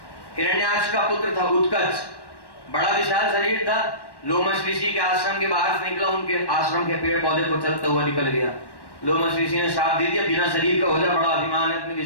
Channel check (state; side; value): late; right; 1.1 ms